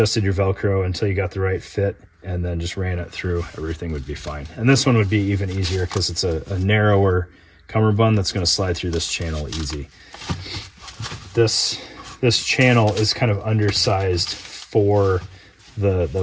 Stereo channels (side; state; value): both; identical; correlation 1.00